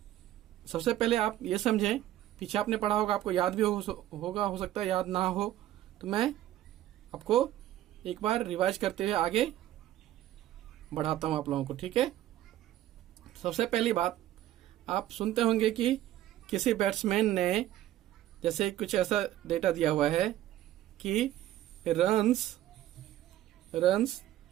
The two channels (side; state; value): left; quieter; 13.5 dB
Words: सबसे पहले आप ये समझें, पीछे आपने पढ़ा होगा, आपको याद भी होगा, हो सकता है याद ना हो, तो मैं आपको एक बार रिवाइज करते हुए आगे बढ़ाता हूं आप लोगों को। ठीक है, सबसे पहली बात, आप सुनते होंगे कि किसी बैट्समैन ने जैसे कुछ ऐसा डेटा दिया हुआ है कि runs